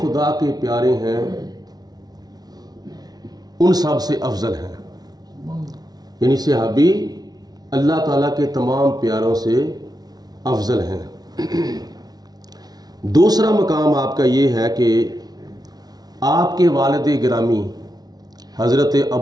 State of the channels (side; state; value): left; late; 0.19 ms